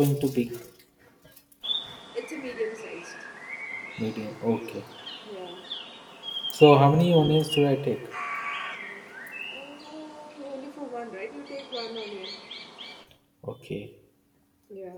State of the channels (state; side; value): identical; both; correlation 1.00